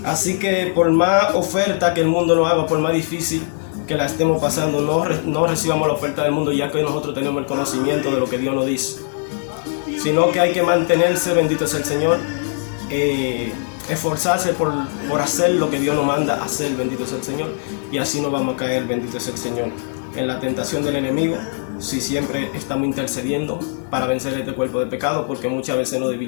Así que por más oferta que el mundo nos haga, por más difícil que la estemos pasando, no recibamos la oferta del mundo, ya que nosotros tenemos el conocimiento de lo que Dios nos dice, sino que hay que mantenerse, bendito es el Señor, esforzarse por hacer lo que Dios nos manda hacer, bendito es el Señor, y así no vamos a caer, bendito es el Señor, en la tentación del enemigo, si siempre estamos intercediendo para vencer este cuerpo de pecado, porque muchas veces nos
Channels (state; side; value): silent; right; 66 dB below the other